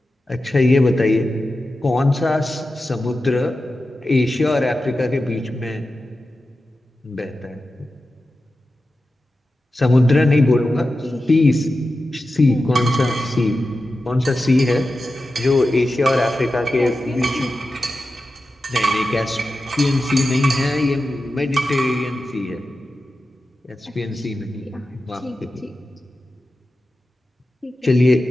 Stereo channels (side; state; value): both; normal; correlation 0.92